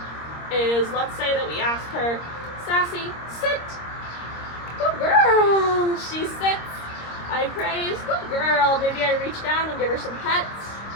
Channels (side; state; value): right; late; 26 ms